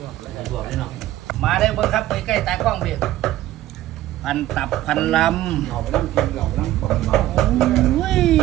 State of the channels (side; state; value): left; quieter; 14.7 dB